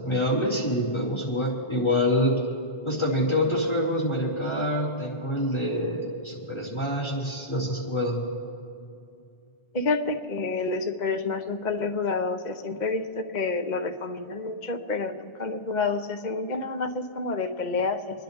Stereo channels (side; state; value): right; late; 1.3 ms